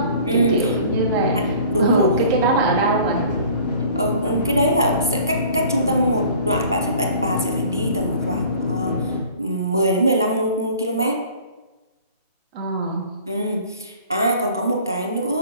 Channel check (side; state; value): both; inverted; correlation -0.49